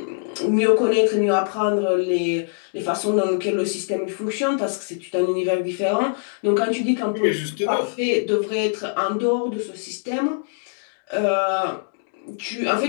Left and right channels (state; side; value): silent; right; digital silence